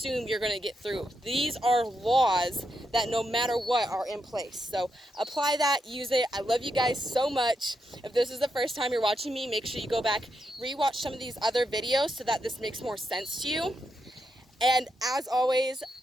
you're going to get through. These are laws that no matter what are in place. So apply that, use it. I love you guys so much. If this is the first time you're watching me, make sure you go back, rewatch some of these other videos so that this makes more sense to you. And as always,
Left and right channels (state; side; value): normal; both; correlation 0.83